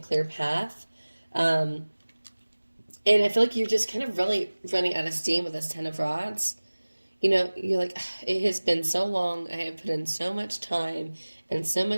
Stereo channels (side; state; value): both; inverted; correlation -1.00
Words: path. And I feel like you're just kind of really running out of steam with this Ten of Rods. You know, you're like, it has been so long. I have put in so much time and so